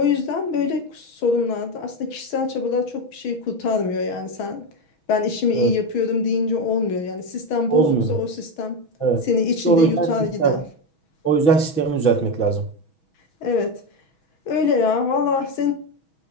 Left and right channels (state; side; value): late; right; 6.2 ms